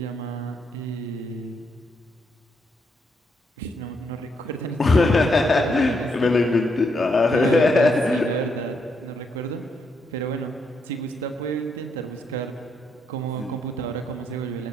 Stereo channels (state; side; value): normal; both; correlation 0.78